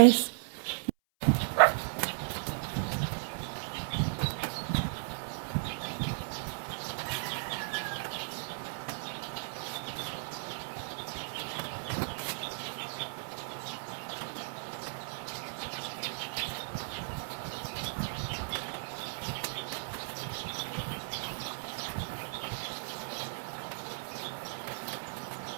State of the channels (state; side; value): silent; left; 54 dB below the other